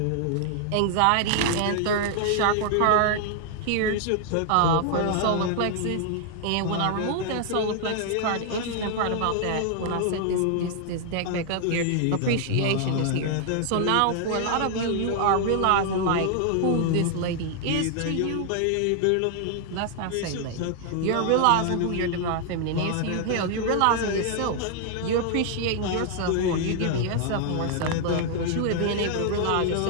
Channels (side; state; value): both; different; correlation 0.00